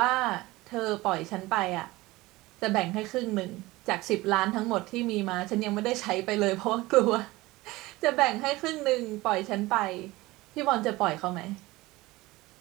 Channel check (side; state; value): left; quieter; 20.0 dB